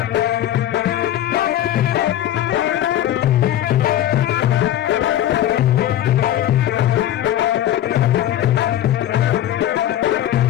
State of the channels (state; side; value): quieter; right; 12.1 dB